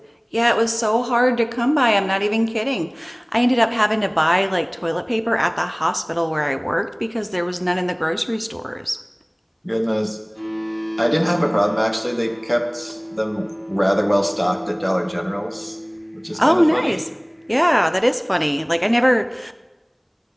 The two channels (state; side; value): identical; both; correlation 1.00